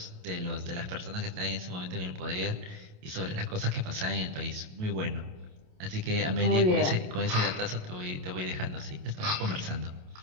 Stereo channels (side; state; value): left; late; 28 ms